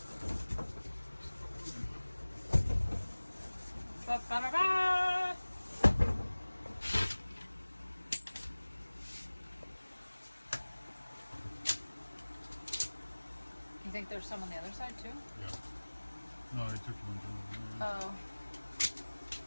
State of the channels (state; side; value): inverted; both; correlation -1.00